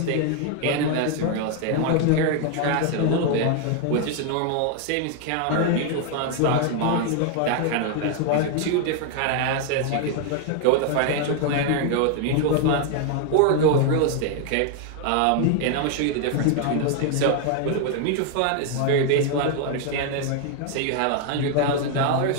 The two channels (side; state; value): both; different; correlation 0.00